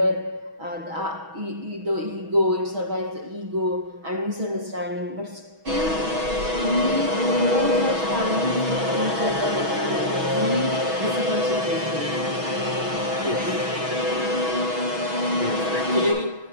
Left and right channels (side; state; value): left; late; 6.2 ms